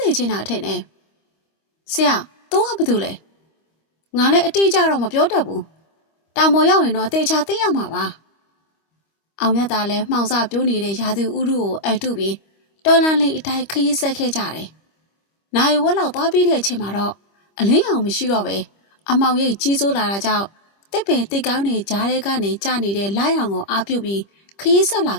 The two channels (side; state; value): right; late; 25 ms